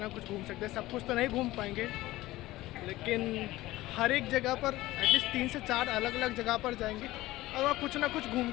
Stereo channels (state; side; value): quieter; right; 17.5 dB